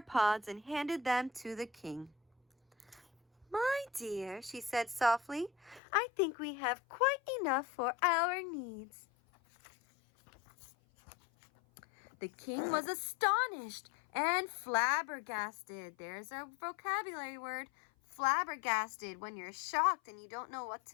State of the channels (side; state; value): right; drops out; at 5.8 s